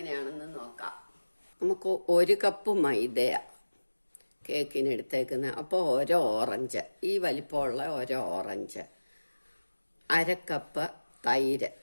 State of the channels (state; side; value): inverted; both; correlation -1.00